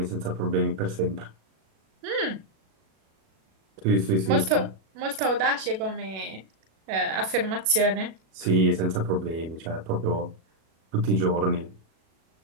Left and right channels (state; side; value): late; left; 37 ms